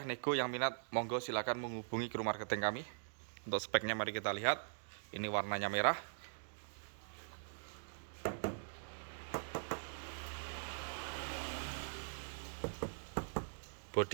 Nego yang minat, monggo silakan menghubungi kru marketing kami. Untuk speknya mari kita lihat. Ini warnanya merah.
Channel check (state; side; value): silent; left; digital silence